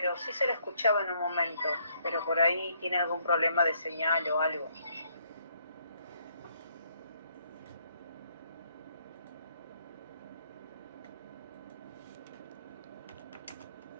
sí se le escuchaba en un momento, pero por ahí tiene algún problema de señal o algo.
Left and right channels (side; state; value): both; inverted; correlation -0.69